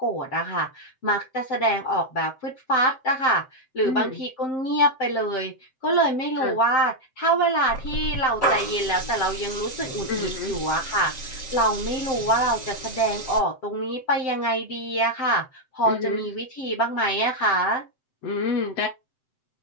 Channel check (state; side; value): late; right; 7.7 ms